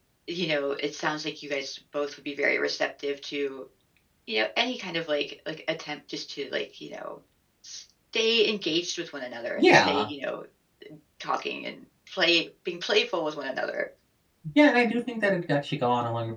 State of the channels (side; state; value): both; identical; correlation 1.00